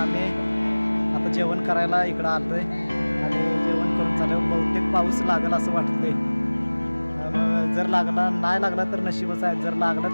आता जेवण करायला इकडं आलोय आणि जेवण करून झालं बहुतेक पाऊस लागेल असं वाटतंय। जर लागला नाही लागला तर नशीबच आहे, जर लागला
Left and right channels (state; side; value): inverted; both; correlation -1.00